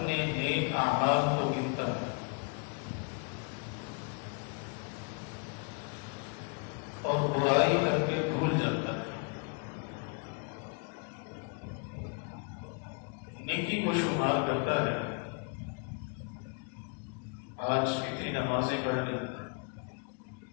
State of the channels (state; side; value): quieter; right; 36.7 dB